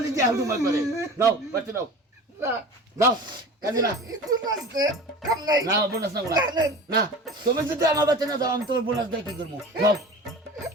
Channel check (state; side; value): normal; both; correlation 0.36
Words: দিয়ে হালু মার করে নাও বাচ্চা নাও না নাও কাজে না একটু নাচতে কাম নাই না বোনাস না না তুমি যদি আমার বাচ্চা না দাও আমি তোমার বোনাস দিয়ে কি করবো নাও